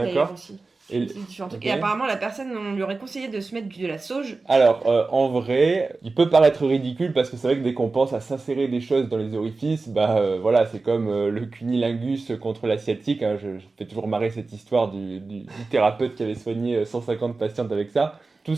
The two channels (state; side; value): quieter; left; 3.8 dB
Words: d'ailleurs aussi. Et C'est différents trucs. ok. Et apparemment, la personne, on lui aurait conseillé de se mettre de la sauge. Alors, en vrai, il peut paraître ridicule parce que c'est vrai que dès qu'on pense à s'insérer des choses dans les orifices, voilà, c'est comme le cunilingus contre l'asiatique. Hein, je fais toujours marrer cette histoire du thérapeute qui avait soigné 150 patientes avec ça. Tout